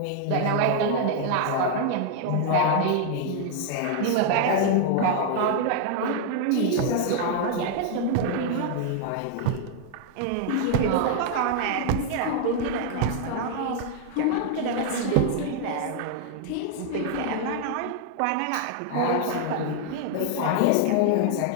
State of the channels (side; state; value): both; different; correlation 0.00